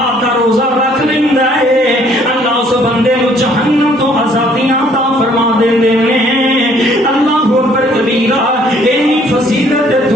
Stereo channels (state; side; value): normal; both; correlation 0.61